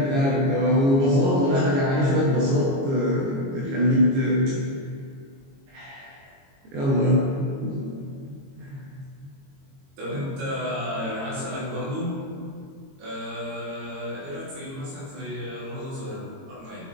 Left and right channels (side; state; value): left; late; 22 ms